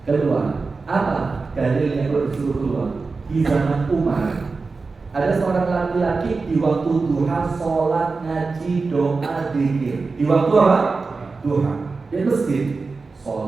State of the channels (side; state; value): left; quieter; 4.2 dB